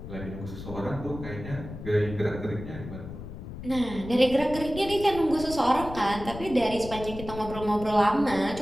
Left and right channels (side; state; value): left; noise; rumble, 11 dB below the sound